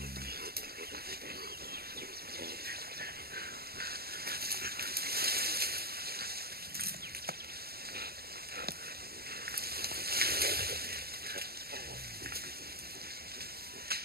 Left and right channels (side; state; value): left; late; 0.45 ms